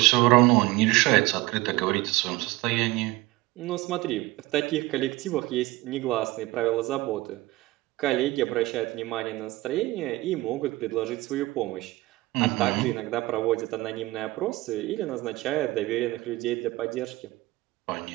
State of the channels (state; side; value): quieter; left; 19.7 dB